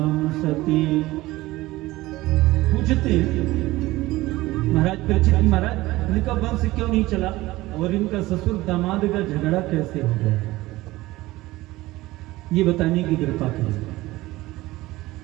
सती। पूछते महाराज परीक्षित, महाराज इनका वंश क्यों नहीं चला और इनका ससुर दामाद का झगड़ा कैसे हो गया, ये बताने की कृपा करें।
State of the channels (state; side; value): quieter; left; 18.5 dB